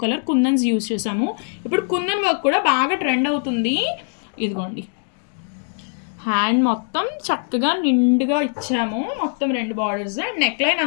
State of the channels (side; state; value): right; silent; 58 dB below the other